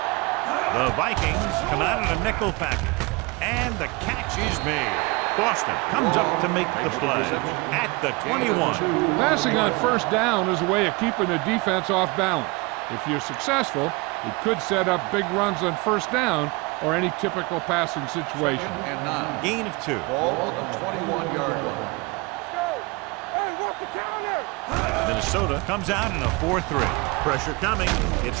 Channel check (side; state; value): left; quieter; 26.3 dB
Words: The Vikings come out in a nickel package, and the catch is made. Boston comes up to make the play at the 21. Passing on first down is a way of keeping the defense off balance. If you're successful, it could set up big runs on first down or any typical passing situation. And 9. Gain of 2. Ball on the 21-yard line. Let's go. Hey, walk the counter. Minnesota comes out in a 4-3. Pressure coming.